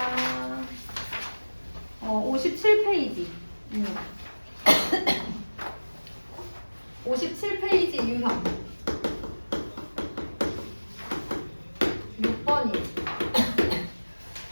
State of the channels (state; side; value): inverted; both; correlation -1.00